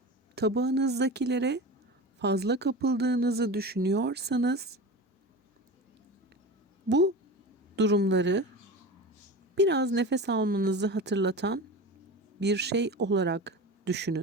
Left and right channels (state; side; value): normal; both; correlation 0.30